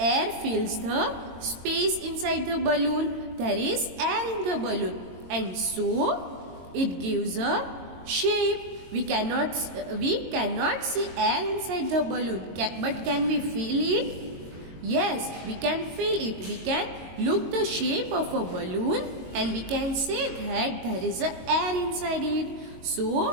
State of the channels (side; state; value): left; late; 22 ms